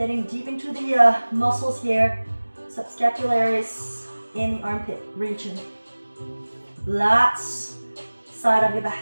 deep into the muscles here, subscapularis in the armpit region. Lats, side of your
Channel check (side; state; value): both; inverted; correlation -1.00